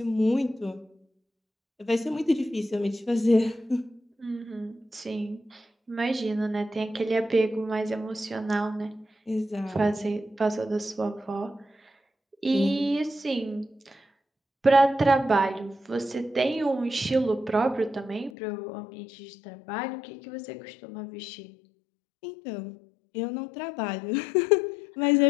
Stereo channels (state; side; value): drops out; right; at 18.3 s